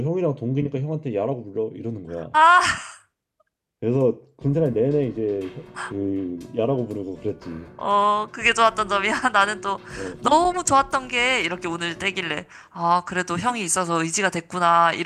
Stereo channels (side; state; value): both; identical; correlation 1.00